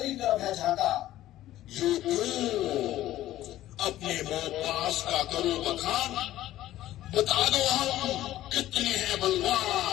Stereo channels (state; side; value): quieter; right; 14.2 dB